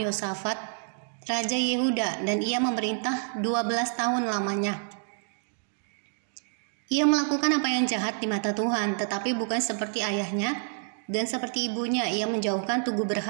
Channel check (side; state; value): left; silent; digital silence